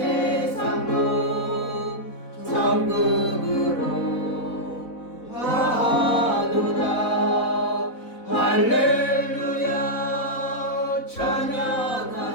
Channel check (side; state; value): right; late; 4.0 ms